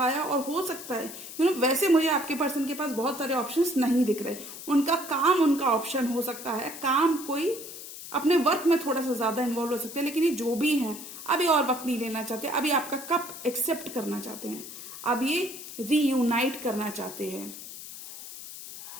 और हो सकता है वैसे मुझे आपके पर्सन के पास बहुत सारे ऑप्शंस नहीं दिख रहे। उनका काम उनका ऑप्शन हो सकता है, काम कोई अपने वर्क में थोड़ा सा ज्यादा इन्वॉल्व हो सकते हैं, लेकिन ये जो भी हैं अभी और वक्त नहीं लेना चाहते, अभी आपका कप एक्सेप्ट करना चाहते हैं, अब ये रीयूनाइट करना चाहते हैं।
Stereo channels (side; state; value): left; noise; hiss, 12 dB below the sound